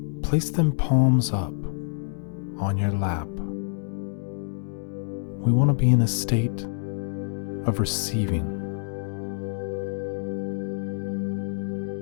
place them palms up on your lap. We want to be in a state of receiving.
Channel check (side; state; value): right; silent; digital silence